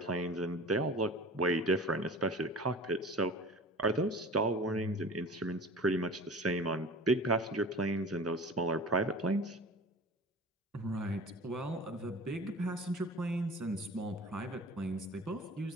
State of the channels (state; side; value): normal; both; correlation 0.39